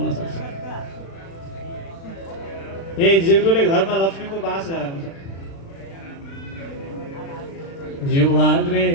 सक्छ। ए जिब्रोले घरमा लक्ष्मीको बास गराउँछ। जिह्वाग्रे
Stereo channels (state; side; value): late; right; 36 ms